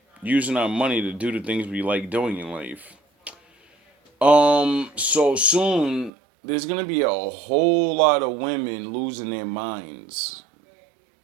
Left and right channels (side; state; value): left; drops out; at 6.1 s